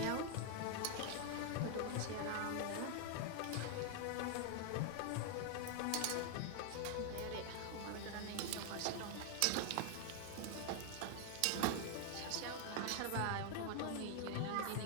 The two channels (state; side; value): different; both; correlation 0.00